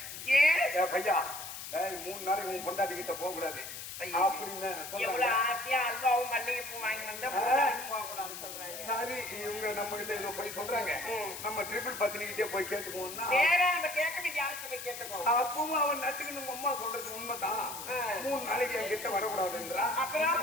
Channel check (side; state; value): left; noise; hiss, 9 dB below the sound